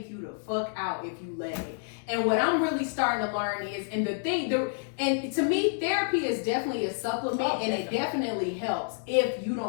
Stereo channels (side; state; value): right; silent; digital silence